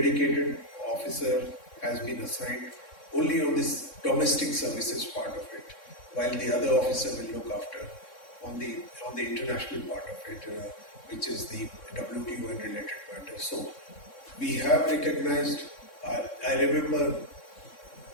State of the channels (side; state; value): right; late; 3.6 ms